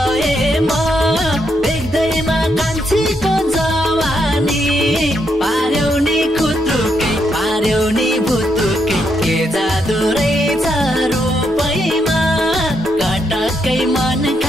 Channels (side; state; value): both; normal; correlation 0.79